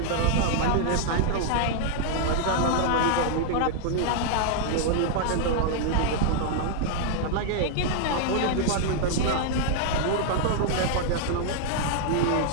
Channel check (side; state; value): both; different; correlation -0.01